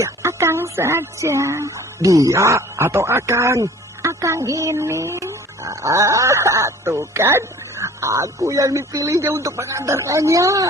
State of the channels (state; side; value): normal; both; correlation 0.49